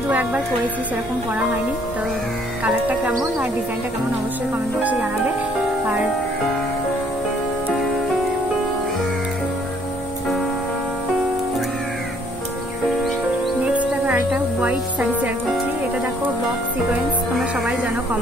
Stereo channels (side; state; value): both; normal; correlation 0.63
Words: 2-1 বার পরেছি, সেরকম পরা হয়নি। তো কালারটা কেমন আর ডিজাইনটা কেমন অবশ্যই কমেন্ট বক্সে জানাবে। আর নেক্সট দেখো একটা হোয়াইট শাড়ি শেয়ার করছি। এটা দেখো বক্স সিকোয়েন্স, তোমরা সবাই জানো কম